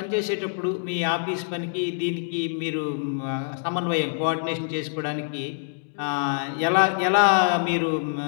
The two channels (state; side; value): silent; right; digital silence